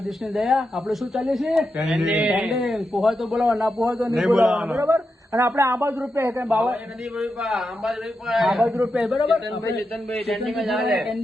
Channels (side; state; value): both; normal; correlation 0.87